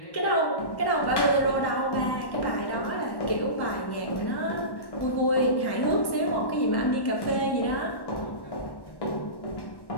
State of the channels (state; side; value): late; right; 1.1 ms